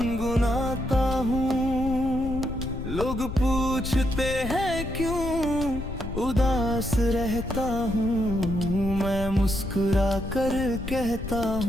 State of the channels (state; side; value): noise; left; rumble, 8 dB below the sound